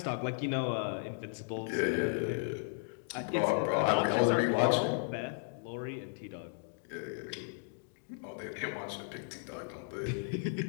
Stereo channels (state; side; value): silent; right; digital silence